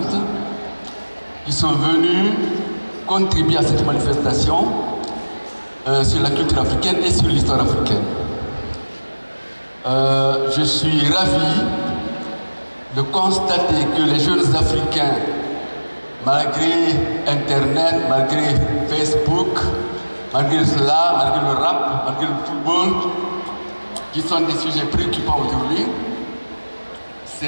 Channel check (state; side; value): inverted; both; correlation -1.00